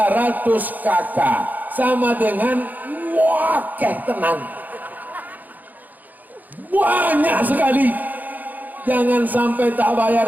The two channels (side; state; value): left; late; 0.083 ms